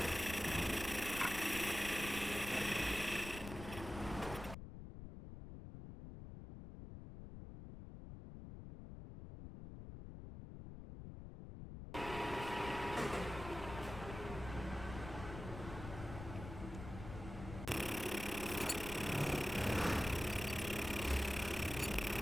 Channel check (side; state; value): left; noise; rumble, 10 dB below the sound